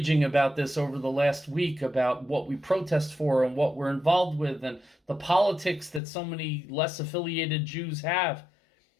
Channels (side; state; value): right; drops out; at 6.0 s